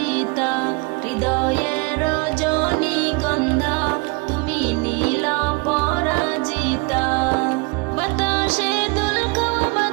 হৃদয়ের রজনীগন্ধা তুমি নীল পরাজিতা। বাতাসে দুল খাওয়া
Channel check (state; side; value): quieter; left; 28.5 dB